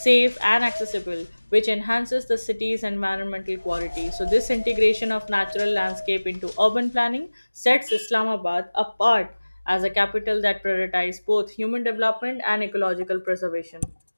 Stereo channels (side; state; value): both; inverted; correlation -1.00